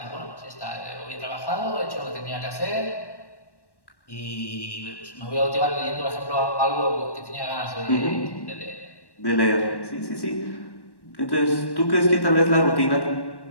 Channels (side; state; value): right; late; 1.1 ms